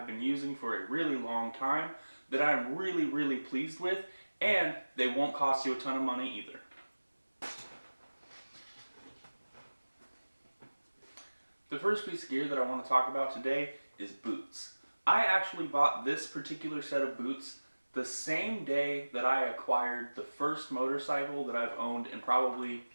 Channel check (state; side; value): inverted; both; correlation -1.00